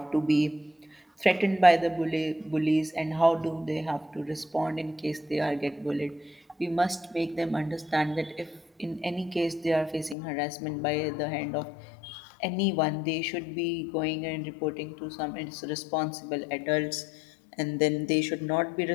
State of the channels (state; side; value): drops out; right; at 10.2 s